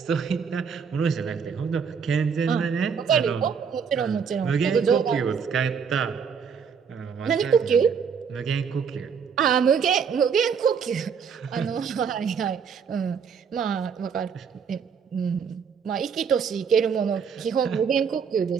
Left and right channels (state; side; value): quieter; left; 6.6 dB